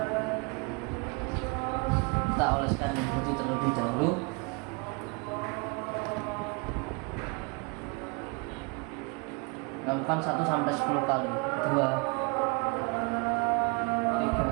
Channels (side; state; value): left; quieter; 30.5 dB